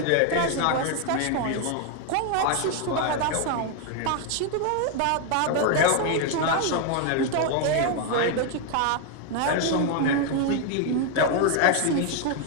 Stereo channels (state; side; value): different; both; correlation 0.01